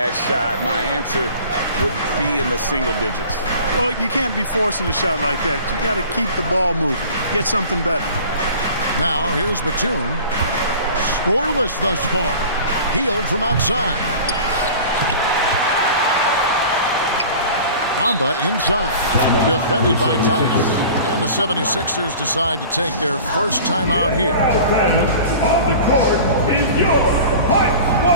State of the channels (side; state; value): both; inverted; correlation -0.42